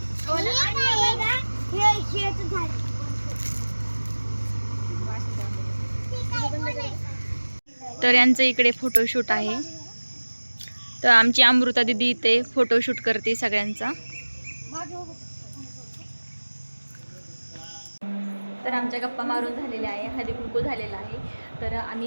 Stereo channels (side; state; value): both; inverted; correlation -1.00